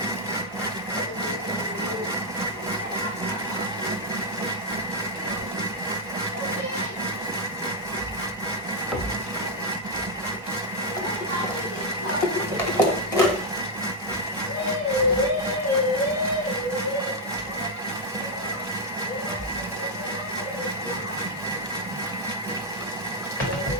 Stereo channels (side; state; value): both; normal; correlation -0.02